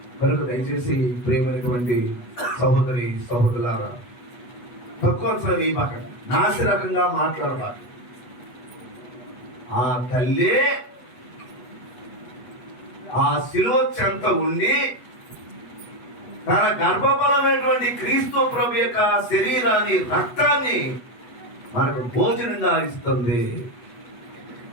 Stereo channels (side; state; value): right; late; 8.2 ms